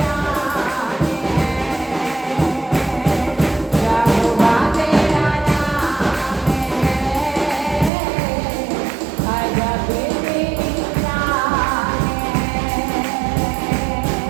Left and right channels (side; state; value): left; drops out; at 7.9 s